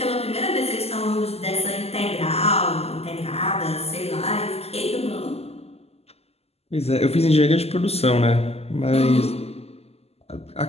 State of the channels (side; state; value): right; late; 0.29 ms